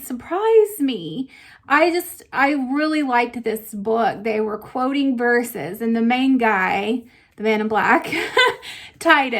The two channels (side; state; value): both; identical; correlation 1.00